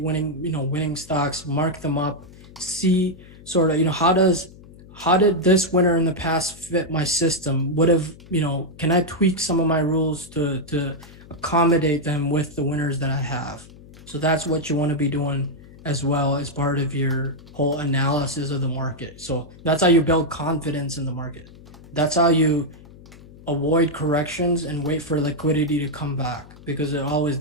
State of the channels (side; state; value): left; noise; hum, 20 dB below the sound